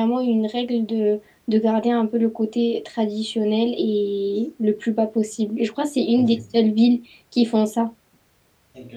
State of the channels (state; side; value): identical; both; correlation 1.00